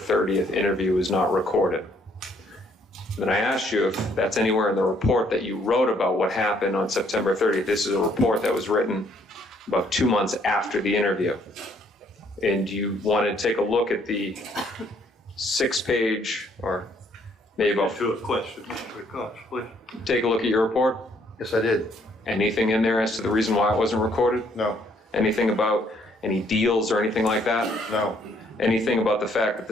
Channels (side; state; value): both; normal; correlation 0.66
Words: interview was not recorded. Then I asked you if that's anywhere in the report that you wrote about what happened on September 30th. This is a report that was written about 2 months after the interview. And you wanted to take a look at the 6-page, or maybe about... To a question, Mr. Cox, please. Take a look at your report. Yes, I did. Anything in there as to the reason why it wasn't recorded? No. Anything about any deals or anything like that? No. Anything about the fact that